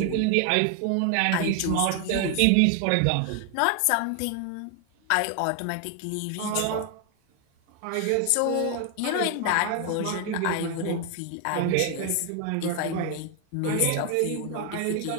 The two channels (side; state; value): both; different; correlation 0.00